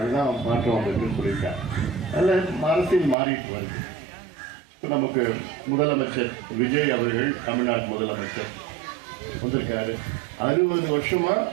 மாற்றம் வந்திருக்குன்னு சொல்லியிருக்காங்க. அதில் அரசியல் மாறிட்டு வருது. இப்போ நமக்கு முதலமைச்சர் விஜய் அவர்கள் தமிழ்நாடு முதலமைச்சர் வந்திருக்காரு. 60 வருஷமா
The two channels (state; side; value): drops out; left; at 3.2 s